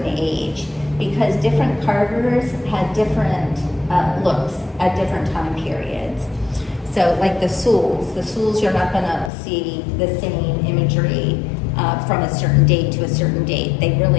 age, because different carvers had different looks at different time periods. So like the Souls you're not going to see the same imagery from a certain date to a certain date. They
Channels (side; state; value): right; drops out; at 9.3 s